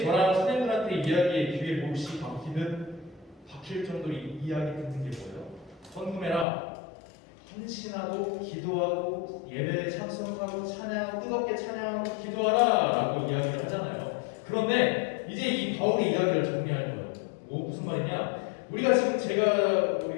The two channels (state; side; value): drops out; right; at 6.5 s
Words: 저랑 선생님들한테 이야기의 귀에 몹시 박힐 정도로 이야기 듣는 게 뭐예요? 헌금해라, 헌신하고 기도하고 예배에 참석하고 찬양하고 뜨겁게 찬양하고 기도하라 라고 이야기를 하잖아요. 그런데 이제 이 바울의 이야기를 정리할 거예요. 무슨 말이냐, 우리가 지금